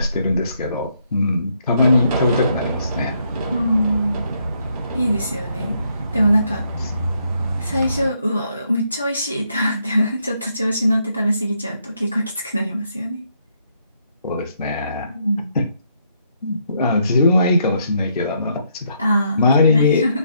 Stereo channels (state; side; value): inverted; both; correlation -0.74